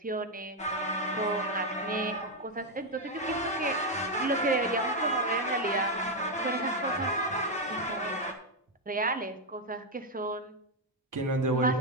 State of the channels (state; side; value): normal; both; correlation 0.03